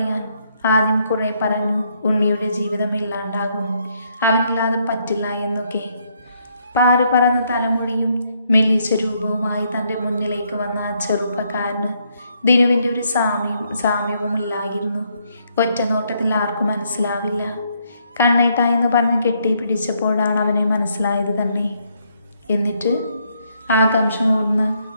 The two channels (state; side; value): inverted; both; correlation -0.73